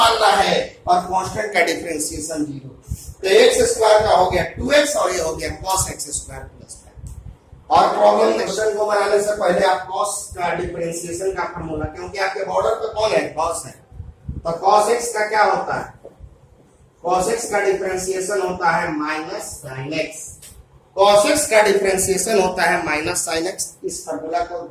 है, और कांस्टेंट का डिफरेंशिएशन 0। तो x स्क्वायर का हो गया 2x और ये हो गया cos x स्क्वायर प्लस 5। और प्रॉब्लम क्वेश्चन को बनाने से पहले आप cos का डिफरेंशिएशन का फार्मूला, क्योंकि आपके बॉर्डर पे कौन है, cos है, तो cos x का क्या होता है, cos x का डिफरेंशिएशन होता है minus sin x। cos x का डिफरेंशिएशन होता है माइनस sin x। इस फार्मूला को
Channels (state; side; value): identical; both; correlation 1.00